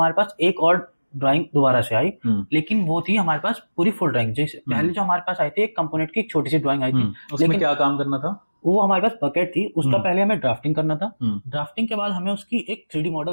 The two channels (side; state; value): both; inverted; correlation -1.00